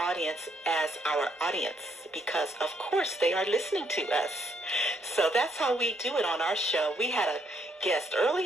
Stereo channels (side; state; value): both; normal; correlation 0.72